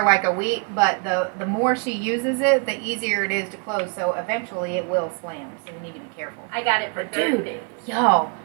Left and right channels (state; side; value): quieter; left; 36.1 dB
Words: like a week, but the more she uses it, the easier it is to close. So eventually it will slam. So we need to be careful. I got it for Dude. 30 days. Y'all,